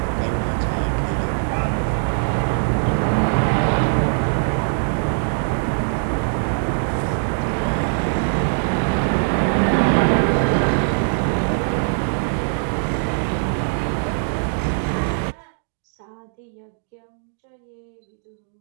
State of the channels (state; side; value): silent; left; digital silence